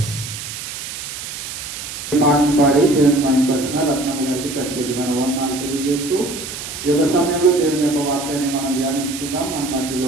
ఈ పాటను పాడి దేవుని మహిమపరిచిన రత్నమ్మ గారికి ప్రత్యేకమైన వందనాలు తెలియజేస్తూ ఈ యొక్క సమయంలో దేవుని యొక్క వాక్యాన్ని మనం ధ్యానించుకుందాం. మన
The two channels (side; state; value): right; noise; hiss, 8 dB below the sound